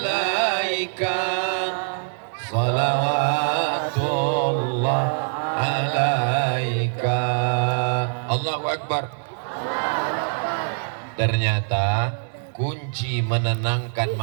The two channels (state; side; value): silent; left; 63 dB below the other